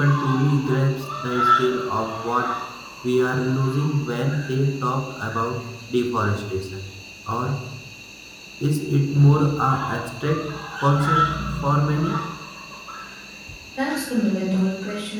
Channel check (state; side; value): identical; both; correlation 1.00